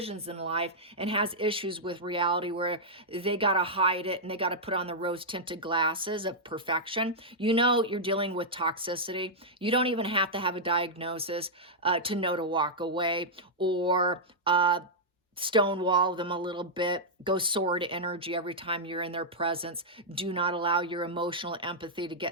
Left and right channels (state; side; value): normal; both; correlation -0.08